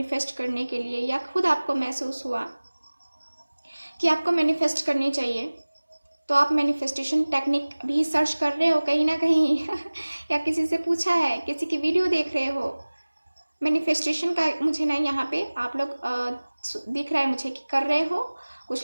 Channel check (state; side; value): inverted; both; correlation -1.00